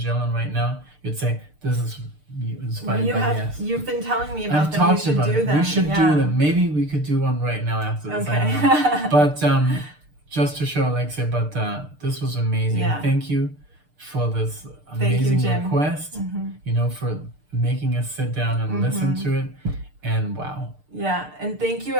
right now, you'd say this is inspired by Yes. You've been telling me about I've them. talked We should about do it. them. We should do them. Maybe we could do one right now after this. Okay. I don't know. But just to show Alexia, but this was amazing. Yeah. Thank you for this amazing Jim. request. You know, for making us sit down and listen to it. And wow. Yeah, and thank you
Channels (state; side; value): late; left; 6.7 ms